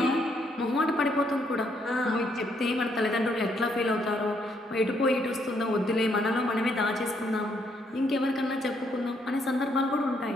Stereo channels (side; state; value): both; normal; correlation 0.72